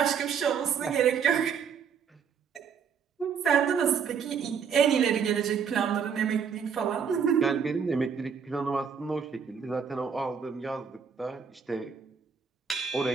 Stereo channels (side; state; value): left; quieter; 6.8 dB